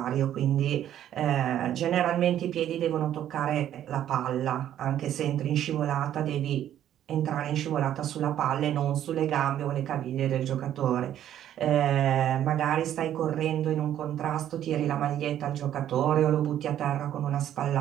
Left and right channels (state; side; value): quieter; left; 11.2 dB